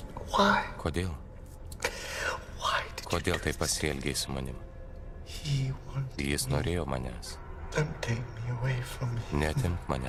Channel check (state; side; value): identical; both; correlation 1.00